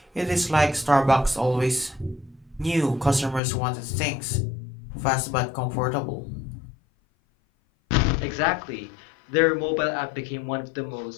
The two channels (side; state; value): right; drops out; at 3.4 s